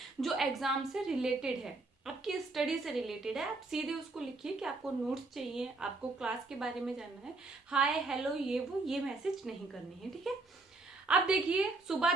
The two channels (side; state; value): left; quieter; 3.3 dB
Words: जो एग्जाम से रिलेटेड है, आपकी स्टडी से रिलेटेड है, आप सीधे उसको लिखिए कि आपको नोट्स चाहिए, आपको क्लास के बारे में जानना है। हाय हेलो ये मैसेज नहीं करनी है, ठीक है। अब देखिए, सुबह